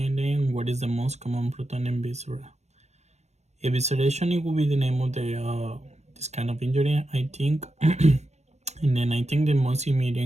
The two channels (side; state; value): left; late; 0.32 ms